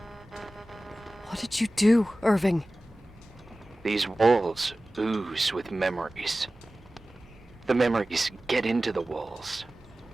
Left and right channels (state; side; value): normal; both; correlation 0.97